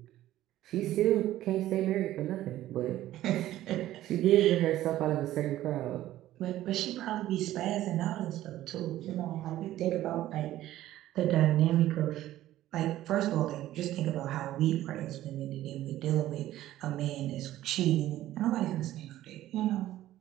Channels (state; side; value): quieter; left; 14.1 dB